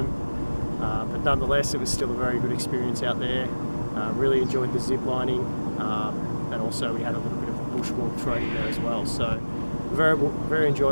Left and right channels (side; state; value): both; inverted; correlation -1.00